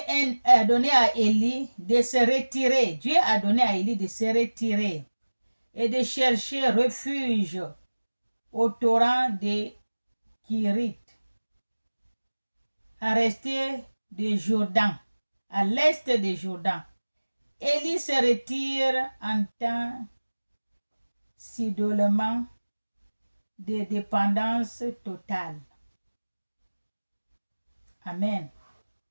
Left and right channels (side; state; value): both; inverted; correlation -1.00